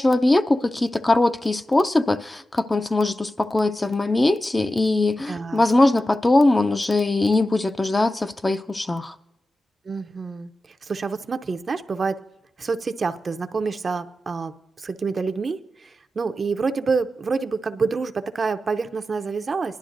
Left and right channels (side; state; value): both; normal; correlation 0.92